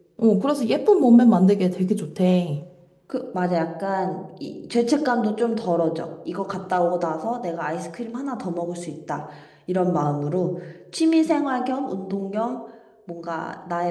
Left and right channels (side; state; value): both; identical; correlation 1.00